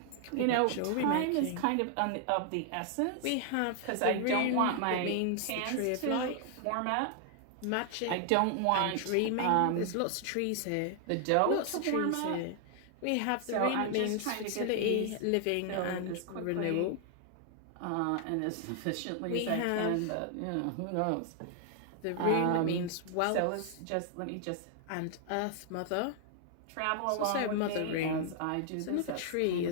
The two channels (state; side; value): different; both; correlation 0.00